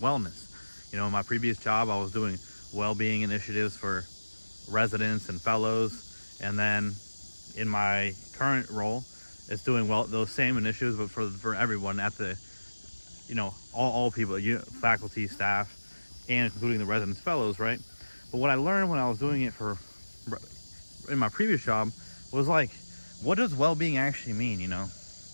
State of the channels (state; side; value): inverted; both; correlation -1.00